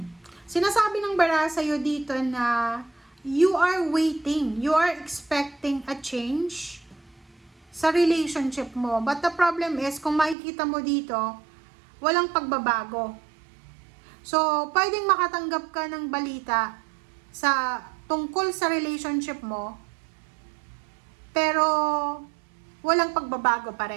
Sinasabi ng bara sa'yo dito na you are waiting, you are expecting a change sa relationship mo. But the problem is, kung makikita mo dito, walang pagbabago. So, pwedeng makatanggap ka ng balita tungkol sa relationship mo, pero walang pagbabago pa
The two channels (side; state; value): left; drops out; at 10.4 s